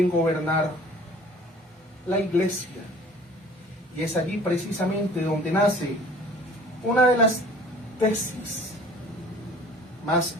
gobernar la iglesia. Y es allí precisamente donde nace una de las tesis más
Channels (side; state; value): both; normal; correlation 0.48